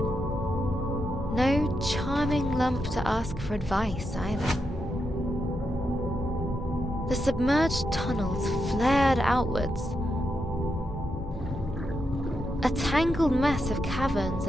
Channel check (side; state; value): both; normal; correlation 0.84